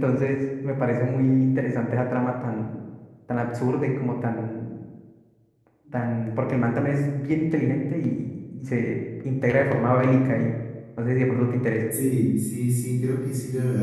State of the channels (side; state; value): both; identical; correlation 1.00